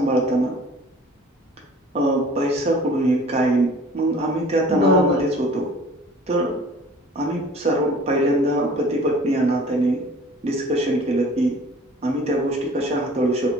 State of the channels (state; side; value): normal; both; correlation 0.48